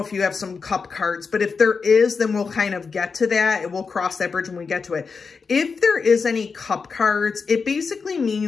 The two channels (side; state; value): right; quieter; 5.1 dB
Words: if you have some cup cards, but if there is, then we'll kind of get to that and we'll cross that bridge when we get to it. If there is any cup cards, it basically